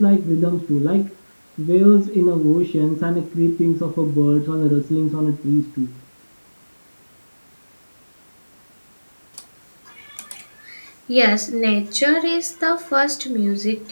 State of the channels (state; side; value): inverted; both; correlation -1.00